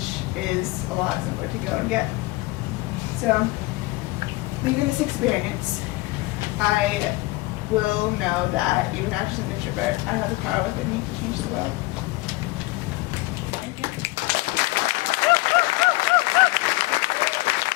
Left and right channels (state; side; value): quieter; right; 21.5 dB